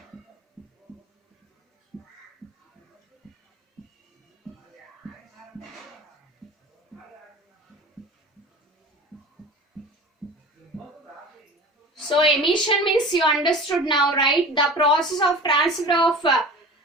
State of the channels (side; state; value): both; normal; correlation 0.38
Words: So emission means you understood now, right? The process of transfer of